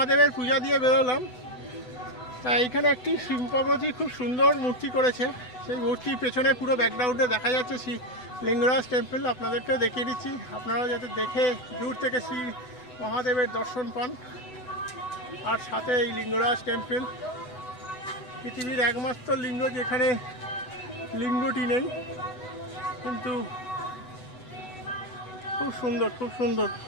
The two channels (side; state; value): right; late; 8.0 ms